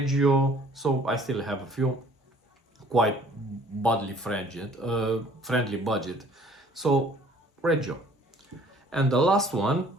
so I still have a few quite friendly budget. So Reggio. And the last one,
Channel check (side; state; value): both; normal; correlation 0.55